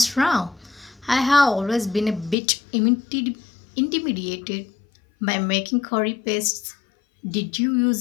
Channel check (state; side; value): drops out; right; at 2.4 s